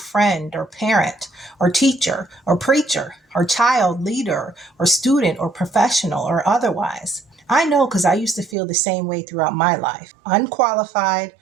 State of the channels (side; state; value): left; drops out; at 8.6 s